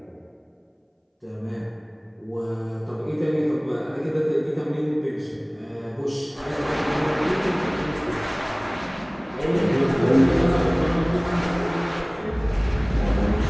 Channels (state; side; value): identical; both; correlation 1.00